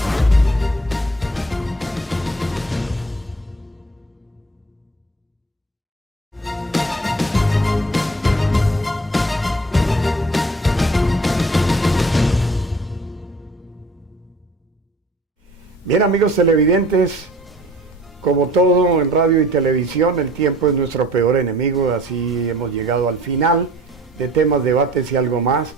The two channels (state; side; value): normal; both; correlation 0.51